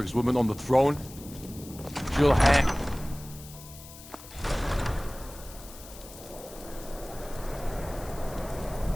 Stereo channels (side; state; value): left; noise; hiss, 17 dB below the sound